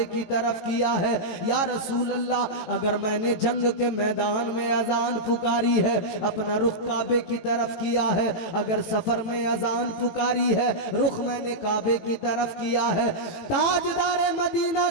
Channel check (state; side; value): late; right; 18 ms